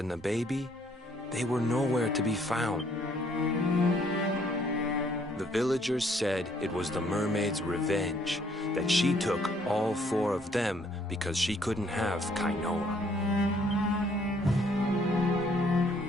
the baby, they were nowhere to be found. The villagers said it was the mermaid's revenge, that she took all 4 of them because she couldn't have Kainoa.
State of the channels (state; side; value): normal; both; correlation 0.65